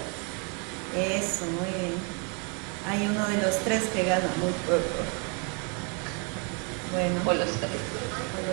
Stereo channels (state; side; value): quieter; left; 35.8 dB